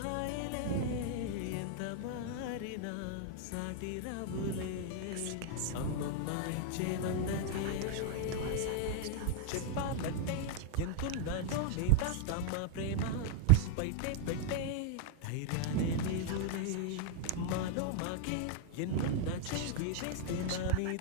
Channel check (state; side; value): different; both; correlation 0.00